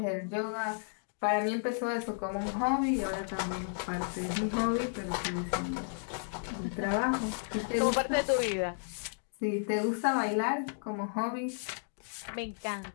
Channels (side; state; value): right; silent; digital silence